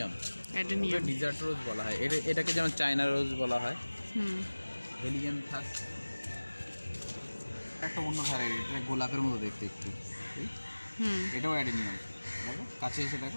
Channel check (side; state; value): both; inverted; correlation -1.00